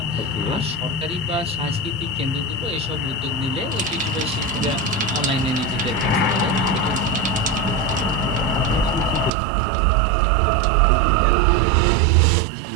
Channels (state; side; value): drops out; left; at 9.3 s